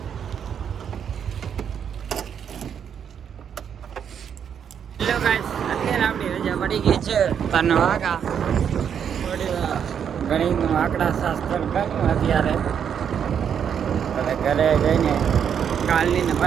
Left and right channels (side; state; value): left; quieter; 8.0 dB